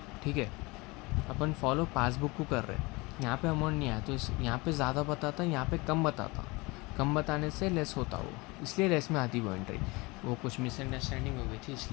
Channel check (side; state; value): right; quieter; 24.6 dB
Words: ठीक है, अपन फॉलो पासबुक को कर रहे, यहाँ पे अमाउंट नहीं आया, तो यहाँ पे ज़्यादा बताता, यहाँ पे कम बताता, कम बताने से लेस होता वो, इसलिए लेस में आती वो एंट्री। वो कुछ मिसअंडरस्टैंडिंग हो गई थी,